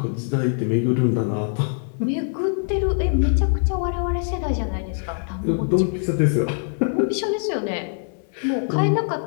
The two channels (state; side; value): silent; right; 62 dB below the other